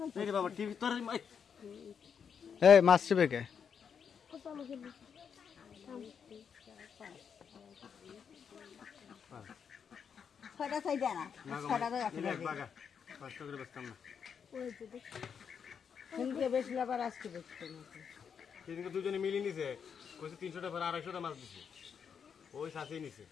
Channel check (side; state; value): right; quieter; 7.0 dB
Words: বাবা টিভি তোর এই মাছ চিবে কে ছয়টা চাই দেয় না ছয়টা তো রাখি বাগা 5 করে বেচতাম না কিন্তু বেশি আবার আজকে বেশি সেদিনকে দুজনে মিলিয়ে নিছে কইছে 300 টাকা 250 টাকা মাছ দিছে ওই সাথেই নিছে